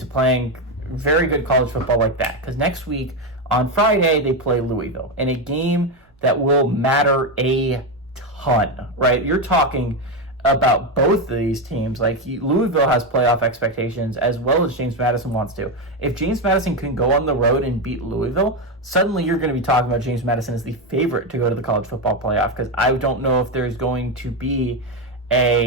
playing very good college football like that, because next week on Friday they play Louisville in a game that will matter a ton, right? You're talking about both of these teams. Like, Louisville has playoff expectations as well as James Madison wants to. If James Madison can go on the road and beat Louisville, suddenly you're going to be talking about James Madison as the favorite to go to the college football playoff, because I don't know if there's going to be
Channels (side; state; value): both; normal; correlation 0.09